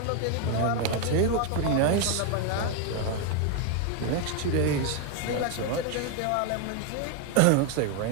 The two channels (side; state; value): both; different; correlation 0.01